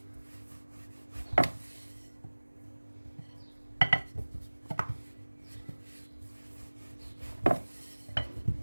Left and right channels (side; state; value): both; inverted; correlation -1.00